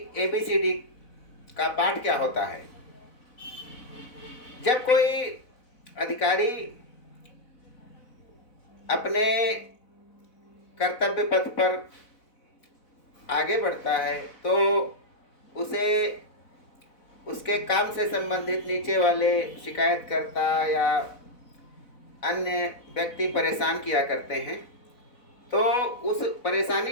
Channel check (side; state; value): right; late; 4.0 ms